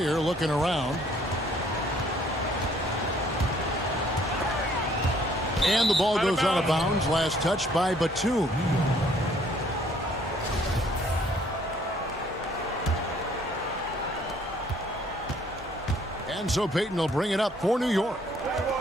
looking around. And the ball goes out of bounds. Last touch by Batum. And so Payton will bring it up for New York.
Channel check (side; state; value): both; normal; correlation 0.62